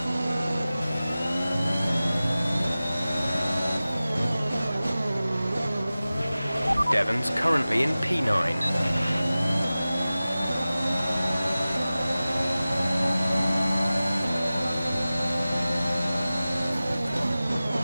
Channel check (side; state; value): both; inverted; correlation -0.96